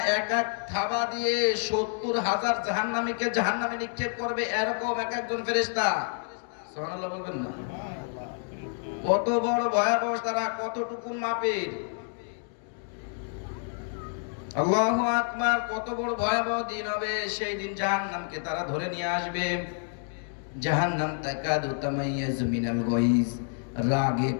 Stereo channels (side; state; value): right; silent; 56 dB below the other